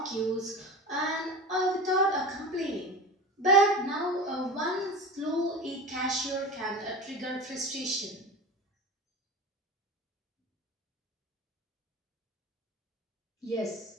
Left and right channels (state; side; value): normal; both; correlation 0.30